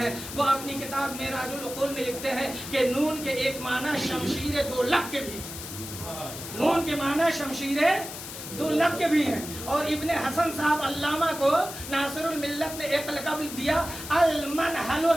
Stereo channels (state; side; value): noise; left; hiss, 10 dB below the sound